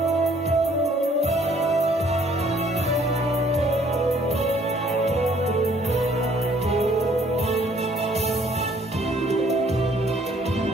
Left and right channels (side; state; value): both; normal; correlation 0.61